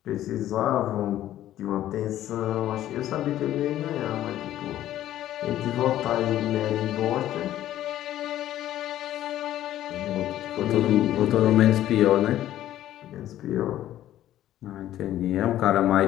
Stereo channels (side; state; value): right; quieter; 12.9 dB